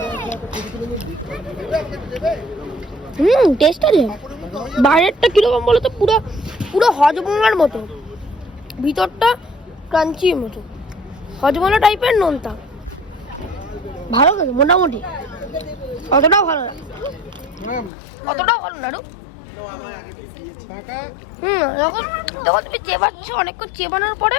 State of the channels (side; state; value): right; drops out; at 17.9 s